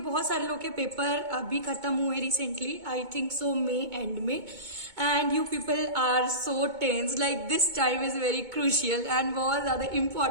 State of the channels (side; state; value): left; late; 2.2 ms